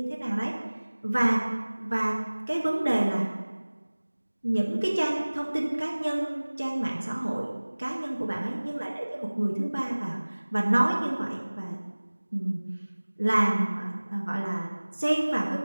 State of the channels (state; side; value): inverted; both; correlation -1.00